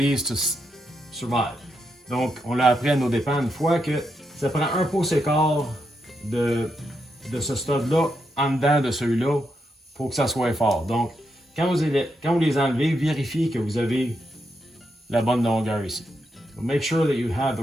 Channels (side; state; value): both; normal; correlation 0.82